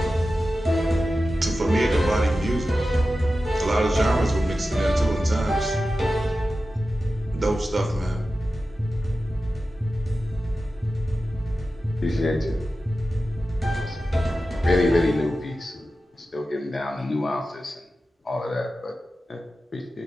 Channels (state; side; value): normal; both; correlation 0.93